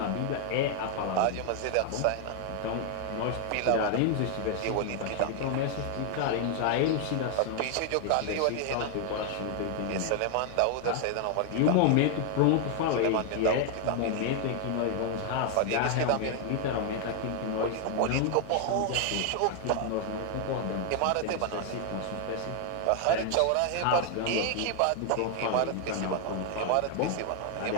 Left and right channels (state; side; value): different; both; correlation 0.00